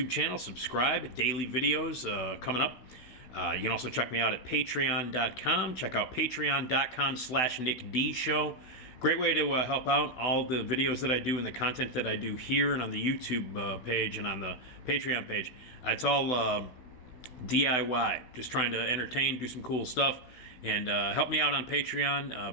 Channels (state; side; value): late; right; 16 ms